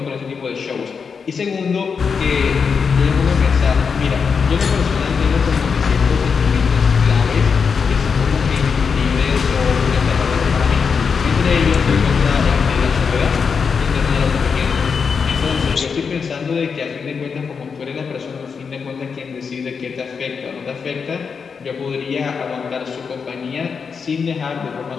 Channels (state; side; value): quieter; right; 5.8 dB